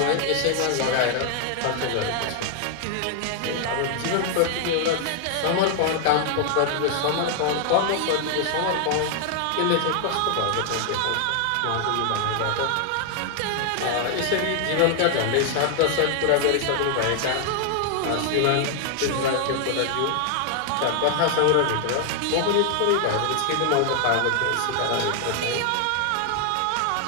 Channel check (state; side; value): different; both; correlation 0.00